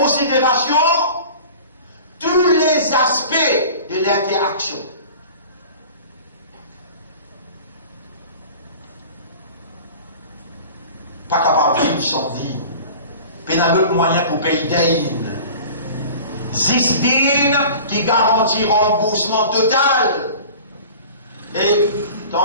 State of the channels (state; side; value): inverted; both; correlation -0.41